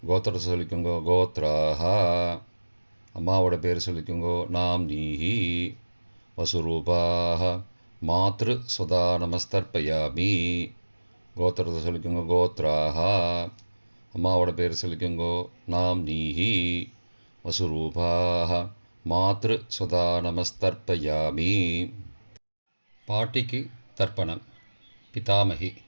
கோத்திரத்தை சொல்லிக்கோங்கோ கோத்ராக. அம்மாவோட பேர் சொல்லிக்கோங்கோ நாம் நீஹி. வசுரூபாக மாத்ரு ஸ்வதா நமஸ்தர்ப்பயாமி. கோத்திரத்தை சொல்லிக்கோங்க கோத்ராக. அம்மாவோட பேர் சொல்லிக்கோங்கோ நாம் நீஹி. வசுரூபாக மாத்ரு ஸ்வதா நமஸ்தர்ப்பயாமி. பாட்டிக்கு தர்ப்பணம். பிதாமகி.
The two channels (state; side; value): inverted; both; correlation -1.00